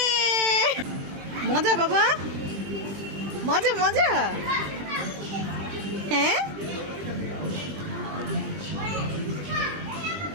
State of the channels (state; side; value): late; left; 20 ms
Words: মজা বাবা, মজা মজা। হ্যাঁ